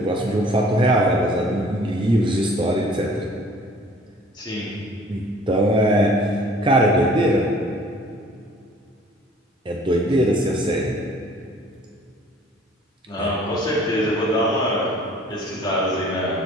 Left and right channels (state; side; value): normal; both; correlation 0.53